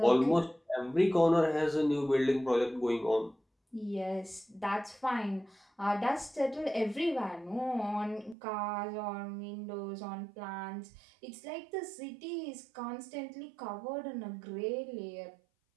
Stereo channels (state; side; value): drops out; left; at 8.3 s